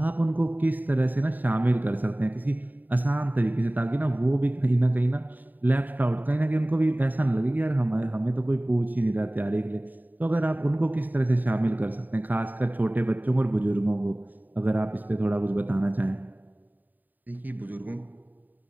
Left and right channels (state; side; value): late; left; 0.087 ms